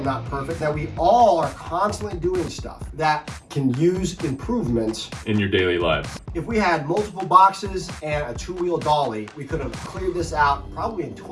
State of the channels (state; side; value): identical; both; correlation 1.00